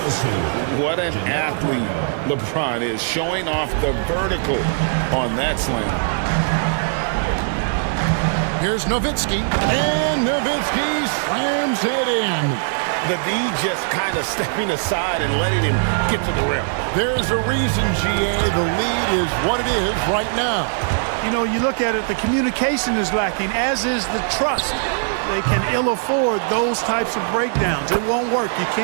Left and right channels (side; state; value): left; silent; digital silence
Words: What an athlete LeBron is, showing off the vertical on that slam. Here's Nowitzki, and Nowitzki slams it in. The D just kind of stepping aside and letting him get to the rim. There's a reason, GA, the lead is what it is right now. You know, you look at it, the communication is lacking, as is the trust. They can ill afford those types of breakdowns. It won't work. You